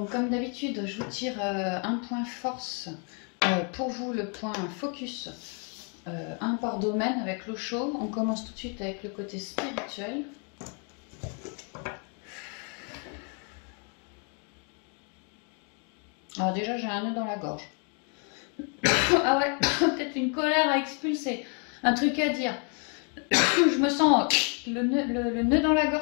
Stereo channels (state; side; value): quieter; right; 37.9 dB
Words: comme d'habitude, je vous tire un point force pour vous, le point focus, un par domaine avec l'eau chaude. On commence tout de suite avec le côté spirituel. Alors déjà j'ai un nœud dans la gorge. Ah ouais, peut-être une colère à expulser, un truc à dire. Je me sens le nœud dans la